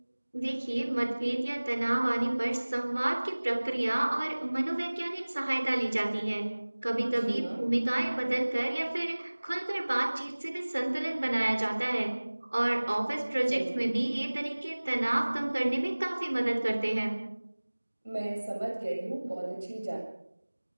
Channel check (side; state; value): both; inverted; correlation -1.00